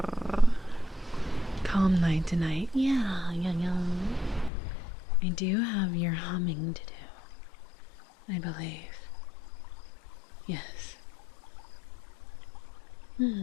Calm night tonight. Yeah. I do have your humming to do, I believe. Yes. Hmm.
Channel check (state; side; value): drops out; right; at 4.5 s